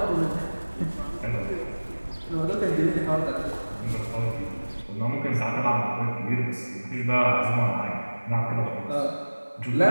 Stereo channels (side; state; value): both; inverted; correlation -1.00